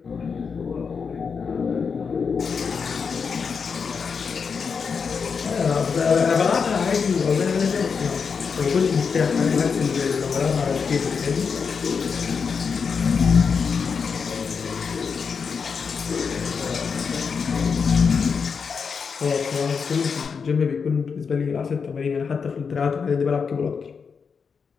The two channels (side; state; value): right; quieter; 5.8 dB